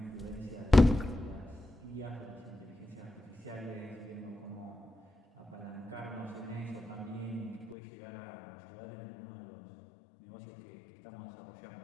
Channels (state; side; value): drops out; right; at 7.8 s